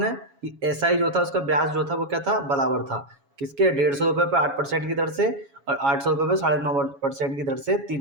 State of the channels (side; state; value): left; late; 7.2 ms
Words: कि एसआई जो था उसका ब्याज जो था वो क्या था, बराबर था किसके, 150 रुपये पर 8% की दर से, और 800 रुपये पर 9.5% की दर से 3